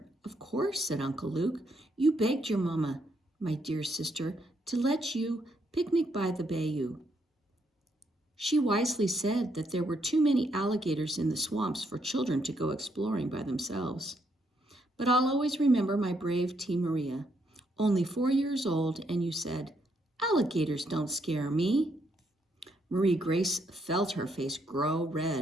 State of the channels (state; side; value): normal; both; correlation 0.75